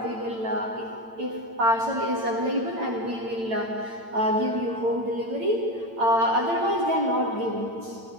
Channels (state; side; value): late; left; 8.9 ms